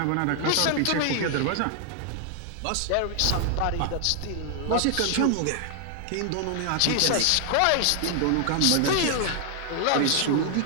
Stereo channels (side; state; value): both; different; correlation 0.00